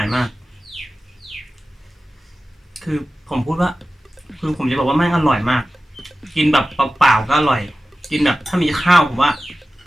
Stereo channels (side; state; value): both; normal; correlation 0.95